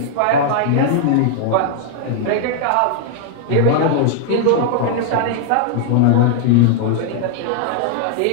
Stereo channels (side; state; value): both; different; correlation -0.01